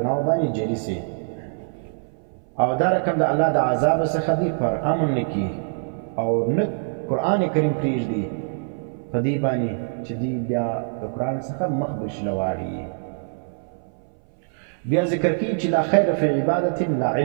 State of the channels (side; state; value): left; silent; 60 dB below the other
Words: باندې جری سي او دا رقم د الله د عذاب څخه دی پر امن نکی او نه قرآن کریم پریږدي په دې باندې چې دی بیا د قرآن څخه مخ بشلواړي بیا ذکر کی چې لا خیر فی عبادت لا